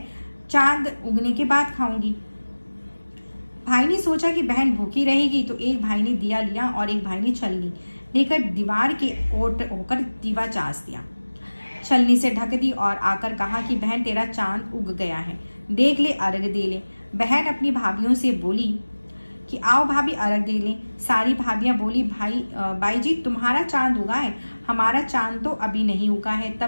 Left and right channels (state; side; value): inverted; both; correlation -1.00